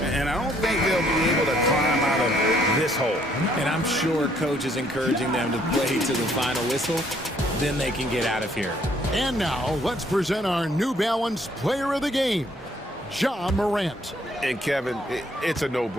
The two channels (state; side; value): normal; both; correlation 0.66